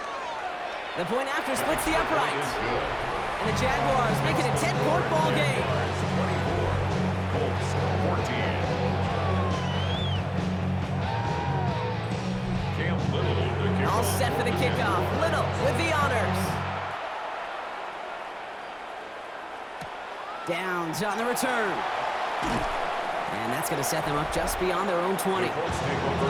The point after splits the uprights. And the Jaguars make it a 10-point ball game. 24, Colts 14. Cam Little to kick All off. set for the kickoff. Little with the honors. Downs on the return. And that's going to set them up just beyond their own 20. The Colts take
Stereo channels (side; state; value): both; identical; correlation 1.00